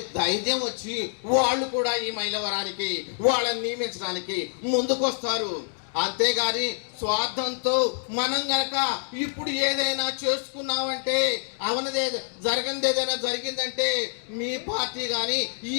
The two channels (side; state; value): right; silent; digital silence